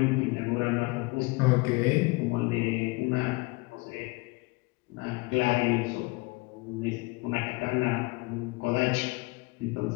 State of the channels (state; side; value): quieter; right; 25.1 dB